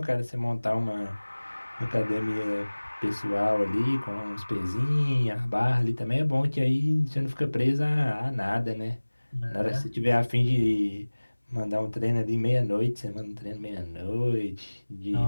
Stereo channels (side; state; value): both; inverted; correlation -1.00